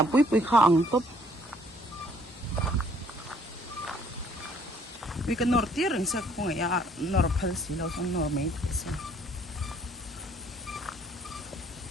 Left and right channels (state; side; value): normal; both; correlation 0.62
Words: pui kha ang top. We can nor tiring sa kung ya nor palsi lo sang nor may so.